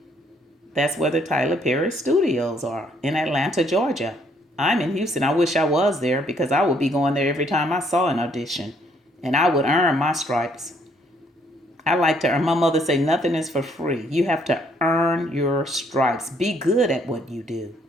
That's where the Tyler Perry studios are, in Atlanta, Georgia. I'm in Houston. I wish I was there because I would be going there every time I saw an audition. And I would earn my stripes. I like to earn. My mother say nothing is for free. You have to earn your stripes. Be good at what you do.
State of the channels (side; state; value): both; normal; correlation 0.67